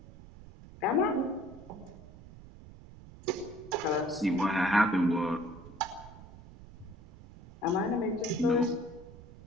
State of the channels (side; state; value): right; noise; rumble, 18 dB below the sound